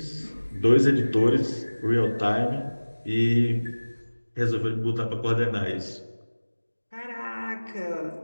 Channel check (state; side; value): inverted; both; correlation -1.00